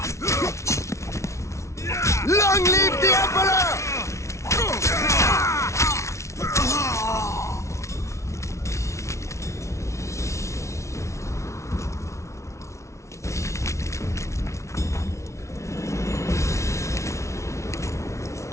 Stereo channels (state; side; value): late; right; 0.14 ms